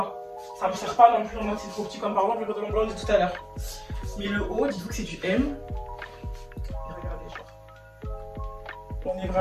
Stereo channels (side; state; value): both; identical; correlation 1.00